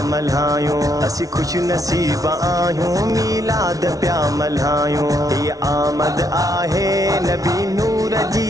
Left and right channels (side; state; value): left; late; 0.18 ms